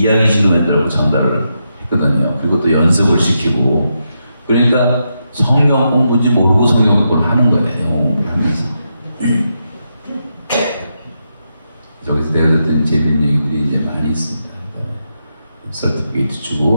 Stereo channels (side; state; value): both; inverted; correlation -0.84